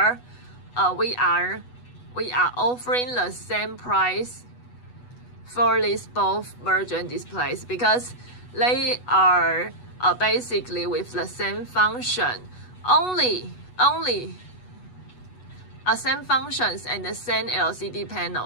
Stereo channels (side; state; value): right; late; 8.1 ms